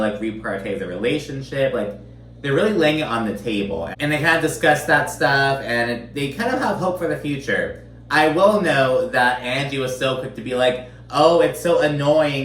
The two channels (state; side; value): identical; both; correlation 1.00